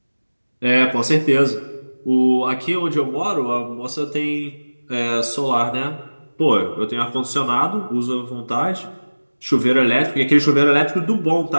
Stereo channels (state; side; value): inverted; both; correlation -1.00